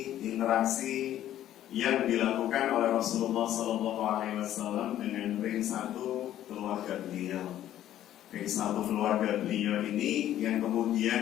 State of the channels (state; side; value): quieter; right; 12.2 dB